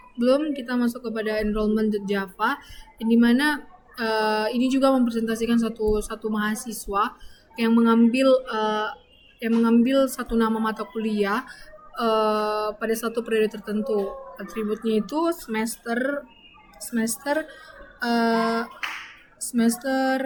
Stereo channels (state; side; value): identical; both; correlation 1.00